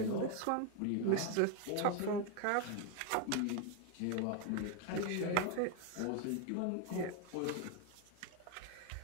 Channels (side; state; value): both; different; correlation 0.01